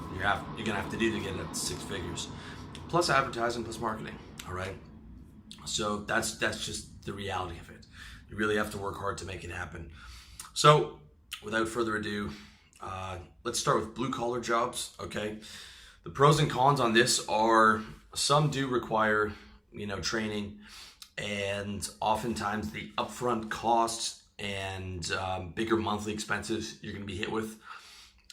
you're gonna have to do to get at six figures, plus advertising, plus marketing. All right, so that's just the reality of it. You really have to work hard to make it happen. So without further ado, let's start with blue collar jobs. Okay, the pros and cons on this are some do require training, and oftentimes the upfront costs and bigger monthly expenses you're going to be hit with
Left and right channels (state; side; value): identical; both; correlation 1.00